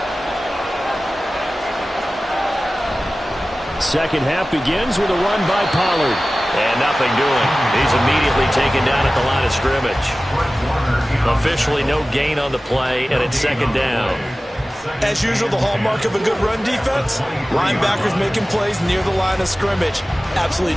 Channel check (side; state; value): both; normal; correlation 0.96